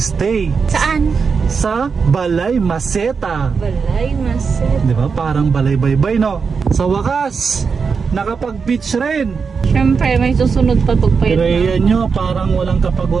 Saan? Sa Balay Maceta. Balay Maceta. Di ba? Parang Balay Baybay, no? Sa wakas, nakapag-beach rin. Siyempre, may susunod pa tugpay. Rhea nyo, parang walang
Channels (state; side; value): quieter; left; 5.5 dB